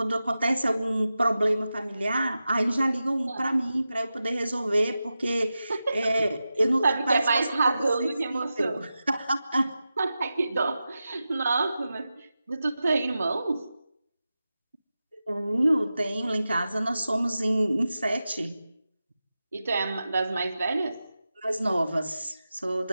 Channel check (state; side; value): inverted; both; correlation -0.92